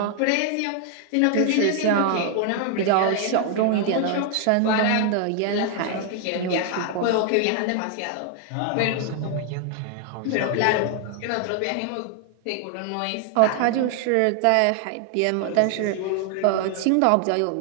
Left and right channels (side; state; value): both; different; correlation 0.00